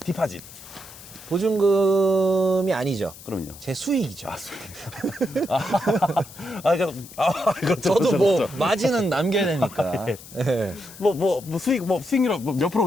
보증금이 아니죠. 그럼요. 제 수익이죠. 그렇죠. 저도 그렇죠, 뭐 그렇죠. 마진은 남겨야 되니까. 예. 뭐 수익률 몇 프로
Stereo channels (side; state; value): left; noise; hiss, 18 dB below the sound